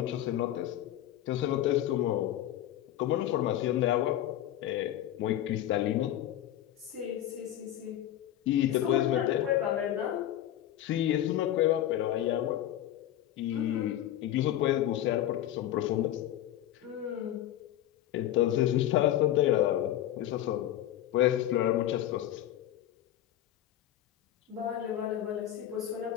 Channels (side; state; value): right; quieter; 12.5 dB